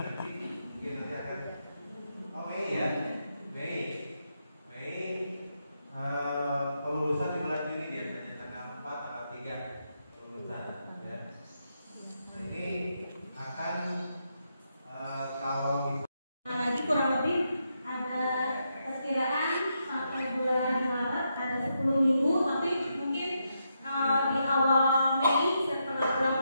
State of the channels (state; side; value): inverted; both; correlation -0.82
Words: Kelulusan di bulan Juni biasanya tanggal 4 atau 3 kelulusan ya. Nah, ini akan kalau lagi kurang lebih ada perkiraan sampai bulan Maret ada 10 minggu, tapi mungkin di awal Mei setelah bulan